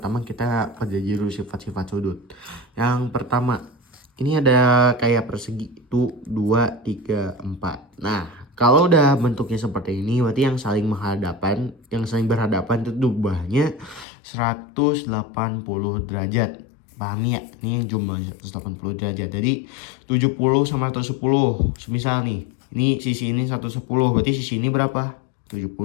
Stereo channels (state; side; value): drops out; right; at 14.1 s